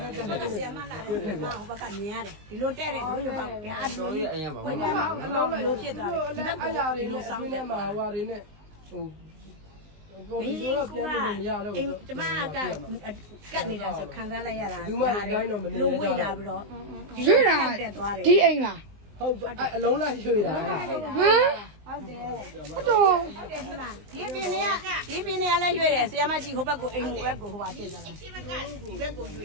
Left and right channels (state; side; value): late; left; 19 ms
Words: နဲ့တက်တယ်ဆရာမလာတယ်ဟောဘက်ကမြင်ရတယ်ဒီလိုတက်တယ်တို့ရပါဗျာဒီလိုကြီးဝင်ကြမှာအလုံးလိုဖြစ်သွားတယ်ဒီဘက်ကအရာတွေနဲ့ဆောင်းနေမှာဟိုဟာတွေနဲ့ဟိုဒီလိုတော့ပြန်လို့မရတော့ဘူးကျမကကတ်နေတာဆိုခံစားလိုက်ရတာလူမတိုင်းတော့မနေတော့ဘူးလို့ဝေ့လာပြီးတော့ရွေ့တာတက်သွားတယ်ဒီအိမ်လားဟုတ်အလုံးလိုက်ရွှေ့တာဟမ်ဟုတ်တယ်ဟုတ်တယ်ဒီမှာဒီပင်တွေကလည်းရွှေ့တယ်ဆရာမကြီးဟိုဘက်ကိုအိမ်ဟိုဘက်ကိုဟိုပါဖြစ်သွားတာဒီဘက်ကကိုရွှ